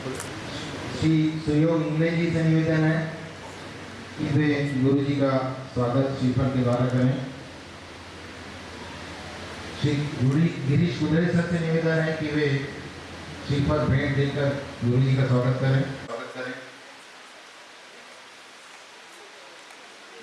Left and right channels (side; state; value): both; identical; correlation 1.00